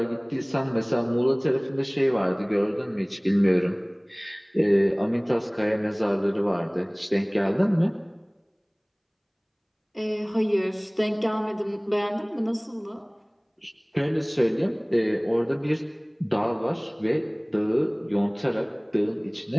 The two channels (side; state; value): both; identical; correlation 1.00